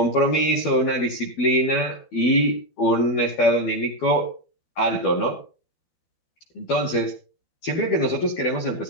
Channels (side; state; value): right; late; 12 ms